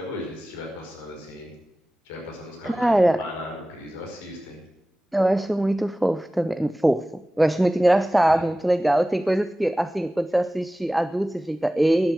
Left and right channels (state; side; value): normal; both; correlation 0.97